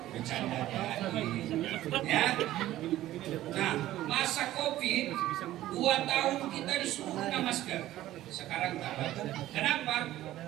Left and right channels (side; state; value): left; quieter; 14.5 dB